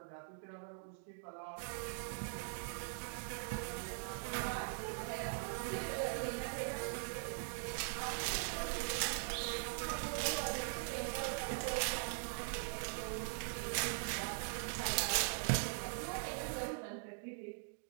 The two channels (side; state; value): left; silent; digital silence